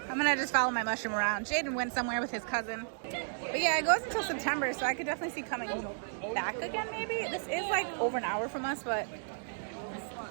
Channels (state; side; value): silent; left; digital silence